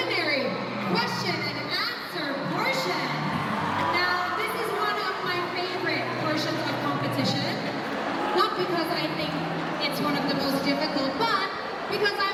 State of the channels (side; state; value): both; identical; correlation 1.00